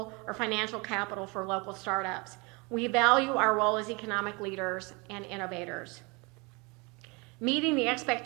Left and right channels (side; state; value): left; quieter; 28.3 dB